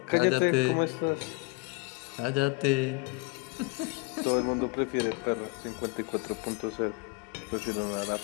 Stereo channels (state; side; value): quieter; right; 27.7 dB